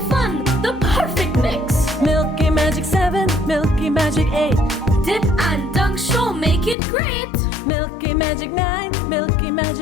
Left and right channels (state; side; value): drops out; right; at 6.8 s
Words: fun, the perfect mix. Milky Magic 7, Milky Magic 8. Dip and dunk sure make it great. Milky Magic 9, Milky